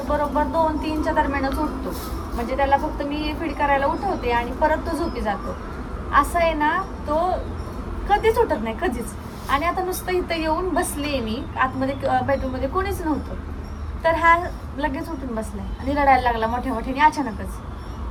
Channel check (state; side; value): identical; both; correlation 1.00